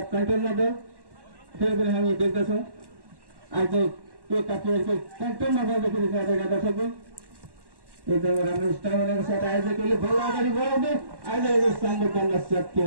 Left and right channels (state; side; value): late; left; 1.1 ms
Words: कन्ट्रोलमा दल फेरि पनि हामी देख्दछौँ आयोजक एकका प्लेयरको कन्ट्रोलमा बल देखिरहेका दर्शकबिन एकदमै राम्रो स्टामिनाको साथ आयोजकले बल अगाडि बढाउँदै आयोजकले सामने गर्न सक्यो